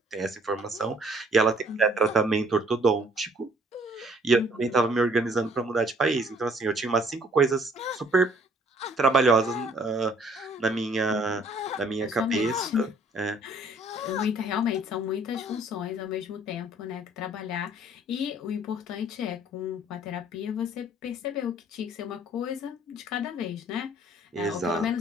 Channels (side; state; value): both; normal; correlation 0.59